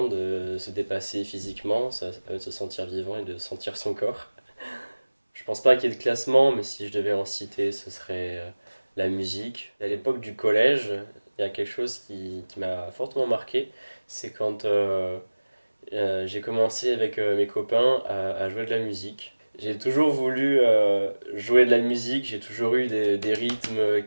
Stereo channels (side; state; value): both; inverted; correlation -1.00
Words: de se dépasser physiquement, ça permet de se sentir vivant et de sentir son corps. Je pense pas qu'il y ait de classement, mais si je devais en citer, ce serait la musique. À l'époque du collège, il y a quelque chose qui m'a fortement marqué, c'est quand j'ai commencé avec mes copains à jouer de la musique. J'ai toujours voulu jouer de la musique, j'ai toujours eu des rythmes